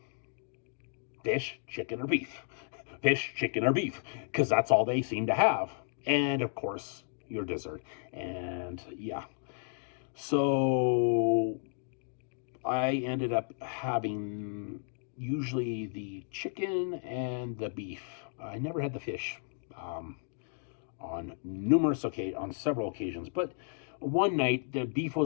Fish, chicken, or beef. Fish, chicken, or beef, because that's all they seem to have. And of course, your dessert. And yeah. So I ended up having usually the chicken and the beef. I never had the fish on several occasions. But one night, the beef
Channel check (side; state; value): right; silent; digital silence